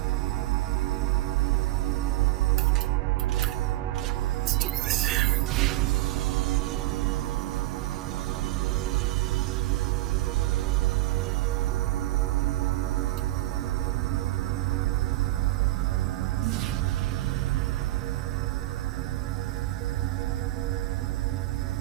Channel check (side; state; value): left; quieter; 17.1 dB